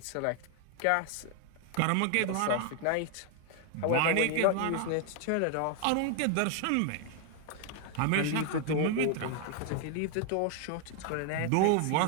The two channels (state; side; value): different; both; correlation 0.00